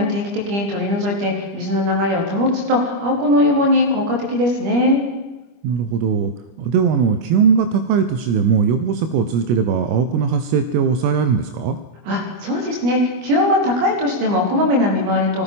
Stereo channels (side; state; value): left; late; 25 ms